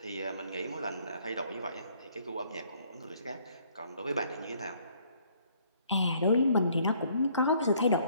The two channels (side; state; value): both; inverted; correlation -0.63